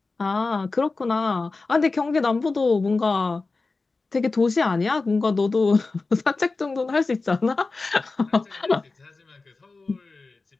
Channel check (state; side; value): quieter; right; 3.8 dB